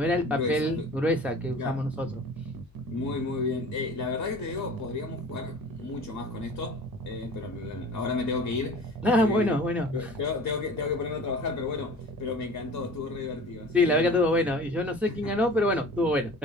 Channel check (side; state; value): left; noise; hum, 28 dB below the sound